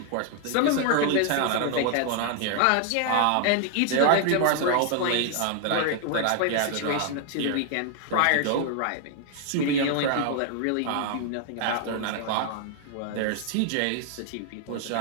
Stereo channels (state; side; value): different; both; correlation 0.00